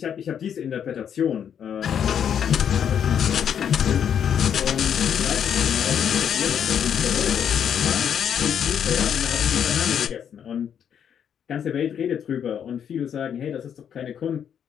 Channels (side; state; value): right; quieter; 8.5 dB